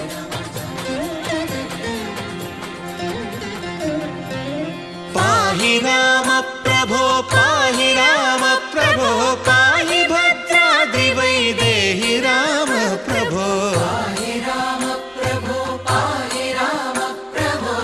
పాహి రామ ప్రభో పాహి రామ ప్రభో పాహి భద్రాద్రి వైదేహి రామ ప్రభో. పాహి రామ ప్రభో పాహి రామ ప్రభో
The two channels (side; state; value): both; identical; correlation 1.00